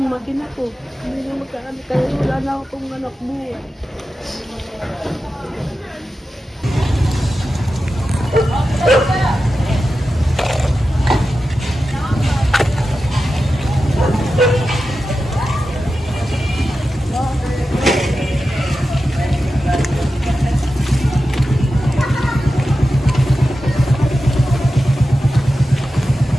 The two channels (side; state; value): both; normal; correlation 0.92